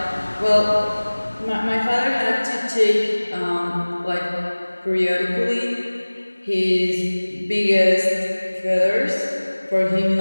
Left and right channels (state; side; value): inverted; both; correlation -1.00